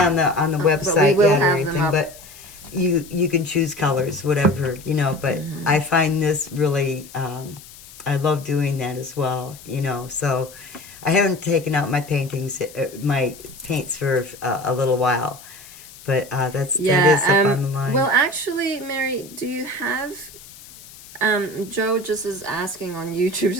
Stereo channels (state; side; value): noise; left; hiss, 19 dB below the sound